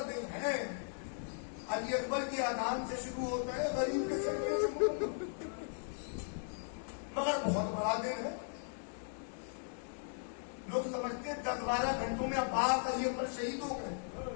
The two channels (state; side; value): silent; right; digital silence